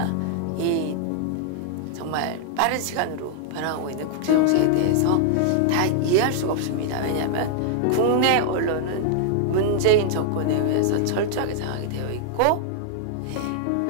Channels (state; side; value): different; both; correlation -0.01